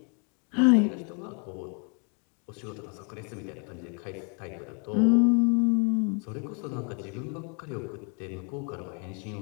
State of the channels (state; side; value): quieter; right; 37.6 dB